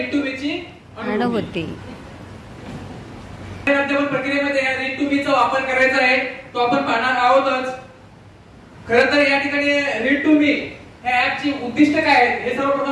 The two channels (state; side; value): identical; both; correlation 1.00